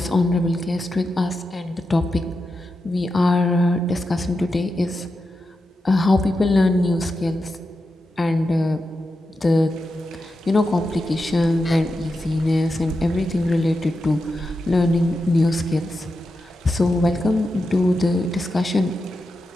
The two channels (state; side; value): normal; both; correlation 0.89